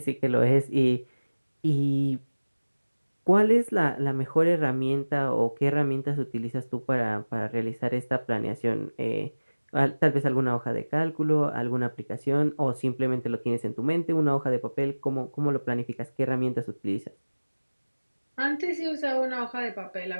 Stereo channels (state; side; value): inverted; both; correlation -1.00